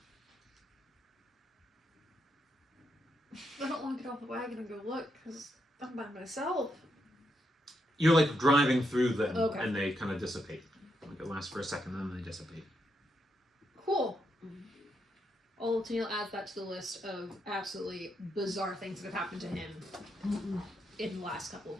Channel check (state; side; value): normal; both; correlation 0.81